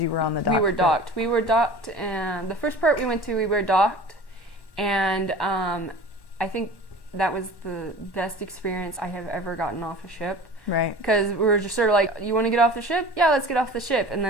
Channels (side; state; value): right; late; 1.1 ms